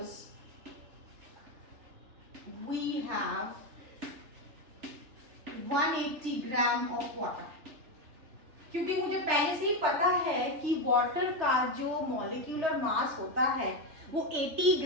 we have 180 gram of water, क्योंकि मुझे पहले से ही पता है कि वाटर का जो मॉलिक्यूलर मास होता है वो 80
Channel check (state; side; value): late; left; 3.4 ms